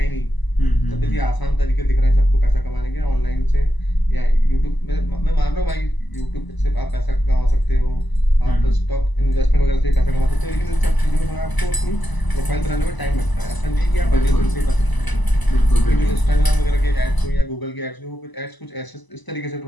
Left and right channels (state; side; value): late; right; 1.0 ms